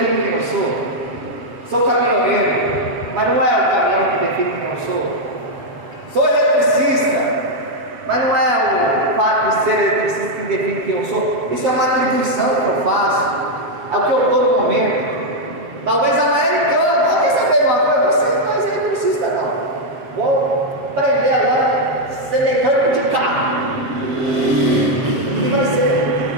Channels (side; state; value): left; late; 7.6 ms